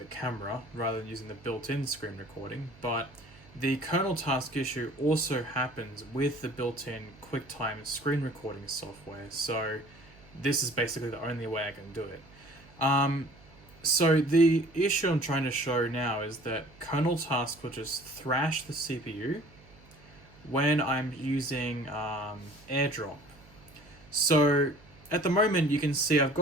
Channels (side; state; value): right; noise; hum, 25 dB below the sound